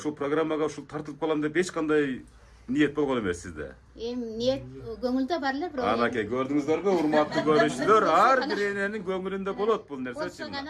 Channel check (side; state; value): both; identical; correlation 1.00